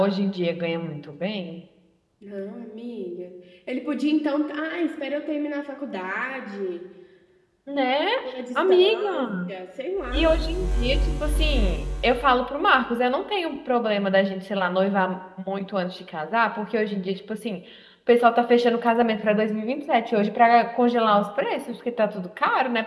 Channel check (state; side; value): identical; both; correlation 1.00